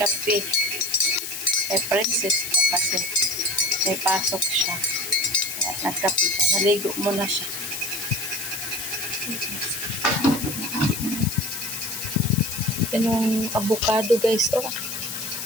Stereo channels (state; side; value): noise; left; hiss, 6 dB below the sound